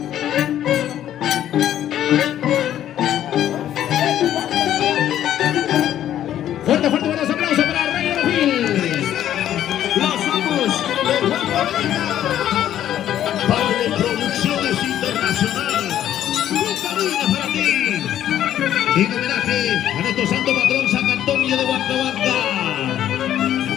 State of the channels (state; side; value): quieter; right; 11.4 dB